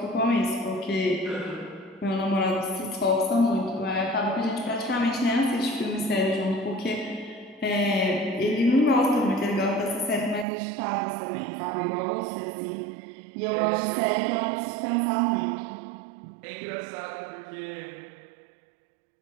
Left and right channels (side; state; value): left; drops out; at 10.5 s